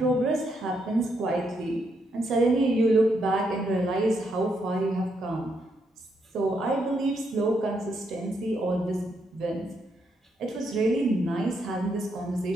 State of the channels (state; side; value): normal; both; correlation 0.78